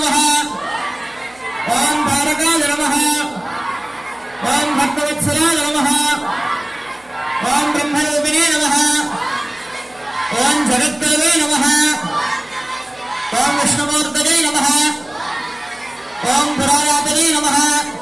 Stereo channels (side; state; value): right; noise; hum, 29 dB below the sound